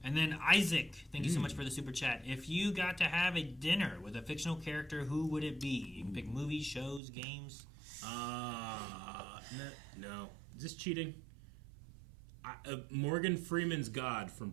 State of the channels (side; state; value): left; drops out; at 7.0 s